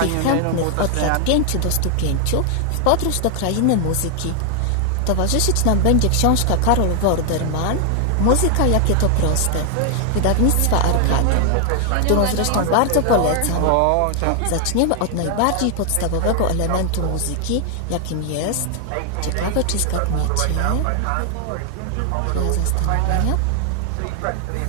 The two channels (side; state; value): both; different; correlation 0.00